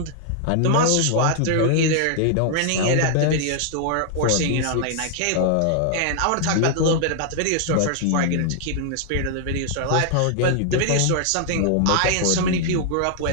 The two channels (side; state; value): both; different; correlation 0.00